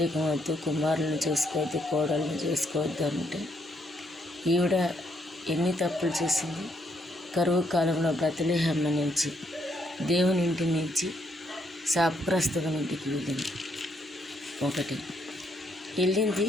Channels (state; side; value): normal; both; correlation 0.73